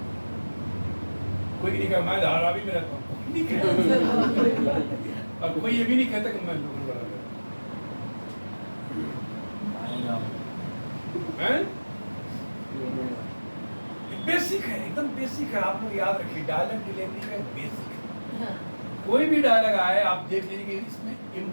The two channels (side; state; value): both; inverted; correlation -1.00